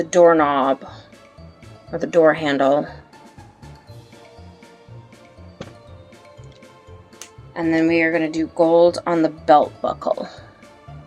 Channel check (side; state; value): both; identical; correlation 1.00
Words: doorknob or the door handle. And then we are gonna do gold on the belt buckle.